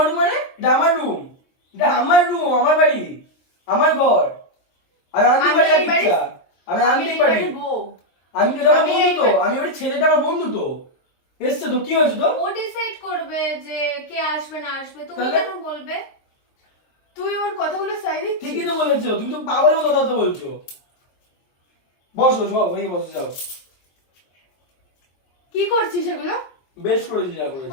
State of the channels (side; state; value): right; late; 23 ms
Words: রুম মানে? এটা আমার রুম, এটা আমার রুম, আমার বাড়ি, আমার ঘর। আমি আনতে আমি পারি এই বাড়ি- ইচ্ছা, আমি আমি আনতে এই পারি। বাড়ির বউ। আমি তো আমার আমি বন্ধু এই তো, বাড়ি- আমি ওই ছেলেটা আমার বন্ধু তো, এসছে তো, কি হয়েছে তো? ও ডিসাইড করবে যে কে আসবে না আসবে, তুমি তাহলে? কেন বলবে? তুই ওর কথাগুলো সাই দিচ্ছিস? ঠিকই তো বলেছো, তুমি তো পাগলের মতো কথা বলছো। বসো সব হয়ে বসে যাও। কি করছিস এগুলো? বেশ করেছি যা করেছি।